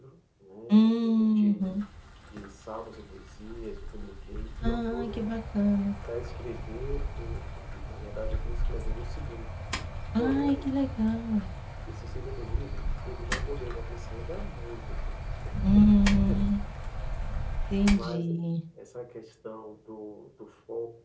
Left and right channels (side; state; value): both; identical; correlation 1.00